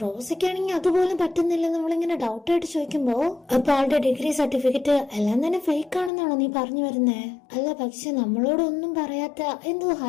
റോസയ്ക്കാണെങ്കിൽ അതുപോലും പറ്റുന്നില്ല. നമ്മളിങ്ങനെ ഡൗട്ട് ആയിട്ട് ചോദിക്കുമ്പോ അപ്പൊ ആളുടെ ഡിഗ്രി സർട്ടിഫിക്കറ്റ് എല്ലാം തന്നെ ഫേക്ക് ആണെന്നാണോ നീ പറഞ്ഞു വരുന്നേ? അല്ല, പക്ഷെ നമ്മളോടൊന്നും പറയാത്ത എന്തോ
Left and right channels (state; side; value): drops out; right; at 6.1 s